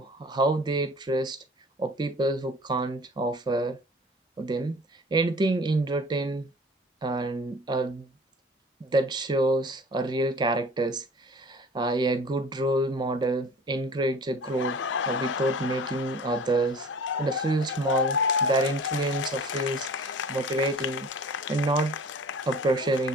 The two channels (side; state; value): both; normal; correlation 0.44